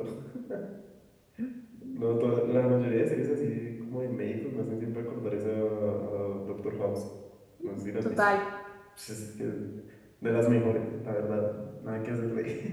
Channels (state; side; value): identical; both; correlation 1.00